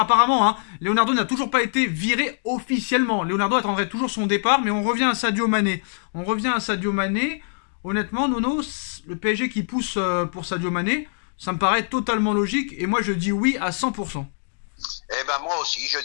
hein, Leonardo n'a toujours pas été viré officiellement. Leonardo attendrait toujours son départ, mais on revient à Sadio Mané. Honnêtement, Nono, le PSG qui pousse pour Sadio Mané, ça me paraît totalement logique. Et moi, je dis oui à 100%. Eh ben moi aussi, je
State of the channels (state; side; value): silent; right; digital silence